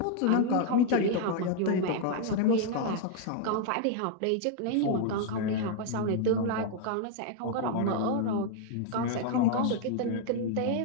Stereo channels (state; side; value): different; both; correlation 0.00